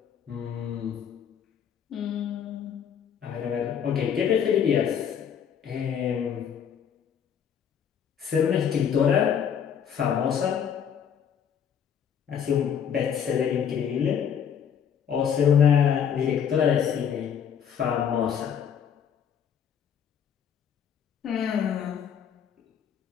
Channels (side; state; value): right; quieter; 8.1 dB